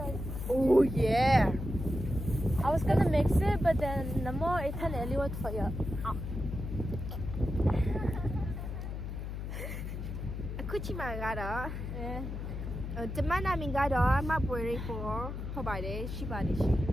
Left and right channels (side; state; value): left; noise; hum, 6 dB below the sound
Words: Oh, yeah. I was gonna mix it, but then the more it turned out for you. Kuchi mà đó. Yeah. Từ mai nào mình ra đó mà bawiri for không phải đấy, chỉ bài đấy.